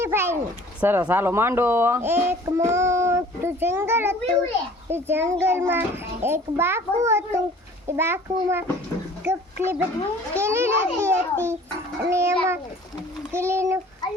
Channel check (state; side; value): normal; both; correlation 0.50